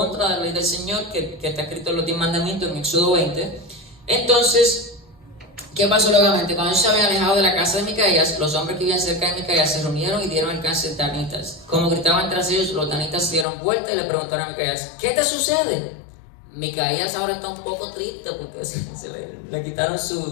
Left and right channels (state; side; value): drops out; right; at 13.5 s